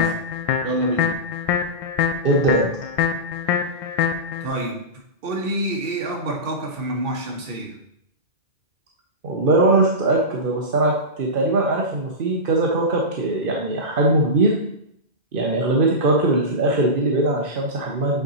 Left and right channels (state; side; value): late; left; 2.6 ms